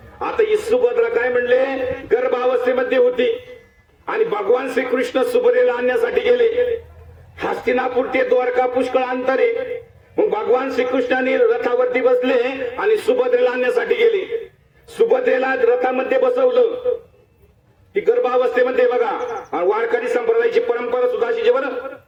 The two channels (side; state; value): both; identical; correlation 1.00